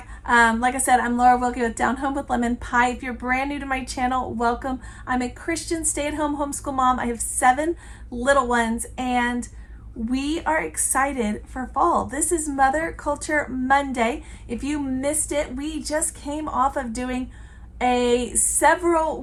Like I said, I'm Laura Wilkie with Down Home with Lemon Pie. If you're brand new to my channel, welcome. I'm a Christian stay-at-home homeschool mom. I have 7 little ones, and we are excited for fall. This is Mother Culture Monday. If you missed it, we just came off of doing a several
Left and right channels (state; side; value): identical; both; correlation 1.00